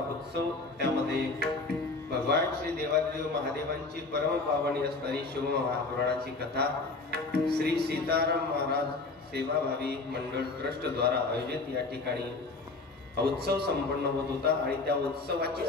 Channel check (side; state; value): right; quieter; 3.6 dB